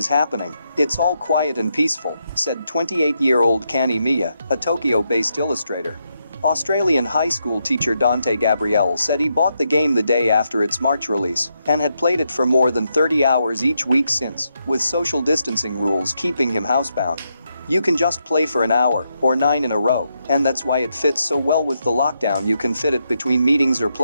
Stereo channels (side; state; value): both; inverted; correlation -0.82